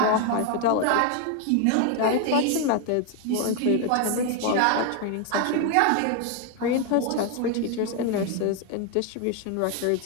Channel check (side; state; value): both; different; correlation 0.01